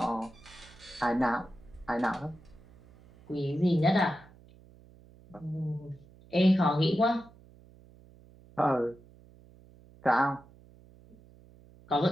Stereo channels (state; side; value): noise; right; hum, 25 dB below the sound